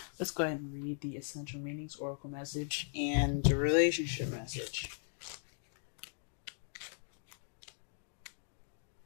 Let's go ahead and read the Essential Meanings, Oracle message, and the relationship message.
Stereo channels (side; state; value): right; silent; digital silence